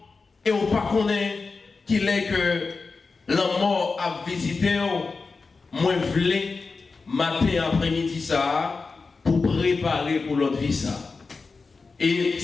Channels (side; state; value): right; quieter; 4.3 dB